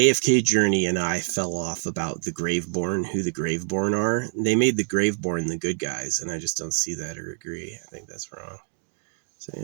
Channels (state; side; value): silent; left; digital silence